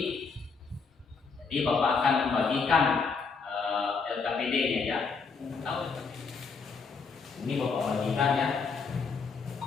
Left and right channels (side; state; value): right; quieter; 5.0 dB